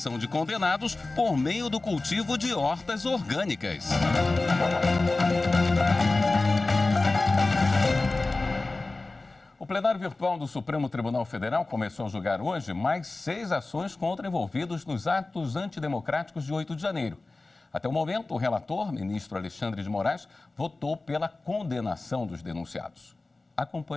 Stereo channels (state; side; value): quieter; right; 3.3 dB